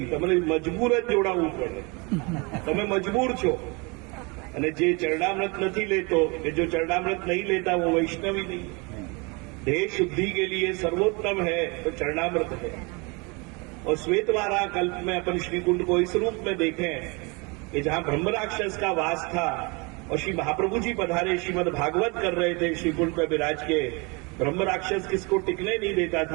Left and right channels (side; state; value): left; quieter; 29.2 dB